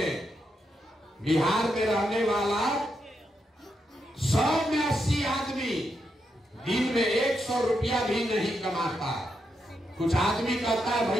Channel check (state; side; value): normal; both; correlation 0.83